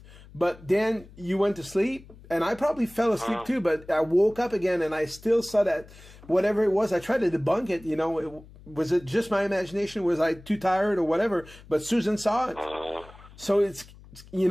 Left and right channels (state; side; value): noise; left; hum, 21 dB below the sound